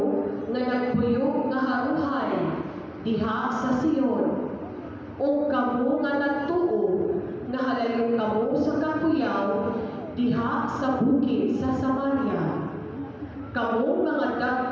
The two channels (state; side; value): identical; both; correlation 1.00